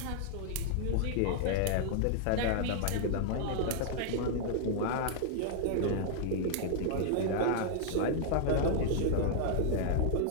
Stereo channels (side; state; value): both; different; correlation -0.01